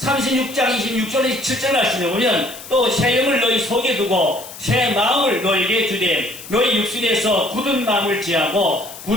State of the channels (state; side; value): noise; left; hiss, 15 dB below the sound